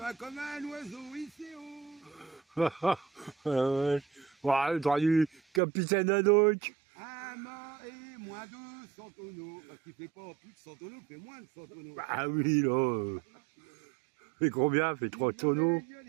comme un oiseau ici, oh. Ouais. Ouais, t'aurais du capitaine Haddock. Amas et moins de 100 tonneaux. Parce qu'il fait pas plus de 100 tonneaux, il fait moins de 100 tonneaux. Ah oui, là. Fait combien? Fait 3 tonneaux.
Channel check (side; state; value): left; drops out; at 5.6 s